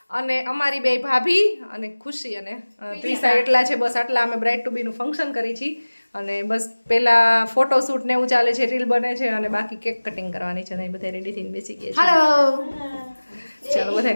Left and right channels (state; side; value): inverted; both; correlation -1.00